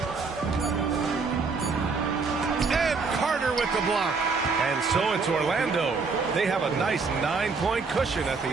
And Carter with the block. And so it's Orlando. They have a nice 9-point cushion at the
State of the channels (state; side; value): quieter; left; 4.6 dB